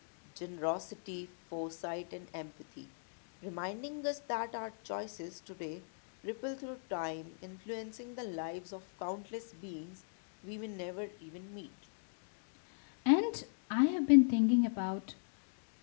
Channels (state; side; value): silent; right; digital silence